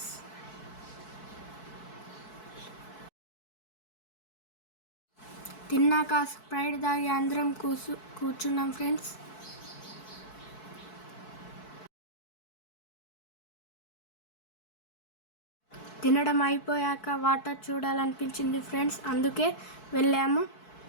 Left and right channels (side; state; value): right; late; 4.6 ms